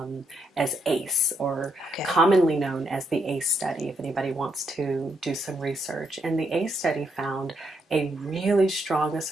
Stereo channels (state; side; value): normal; both; correlation 0.77